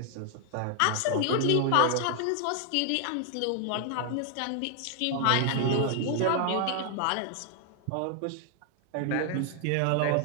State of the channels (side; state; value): both; different; correlation 0.00